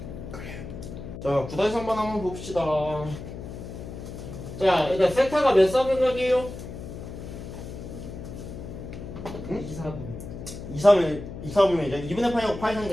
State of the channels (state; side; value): noise; left; hum, 10 dB below the sound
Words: 그래요. 자, 9-3번 한번 봅시다. 자, 일단 세타가 몇 사분각이에요? 응? 2, 4분면이죠. 2분의